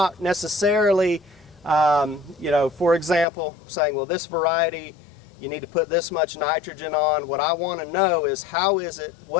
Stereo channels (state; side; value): drops out; right; at 3.2 s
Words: necessarily, you know, for example, saying, well, this variety, you need to put this much nitrogen on. What I want to know is